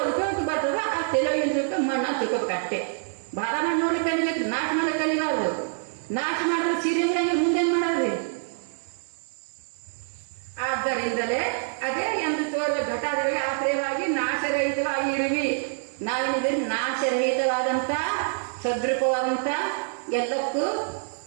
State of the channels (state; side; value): silent; left; 61 dB below the other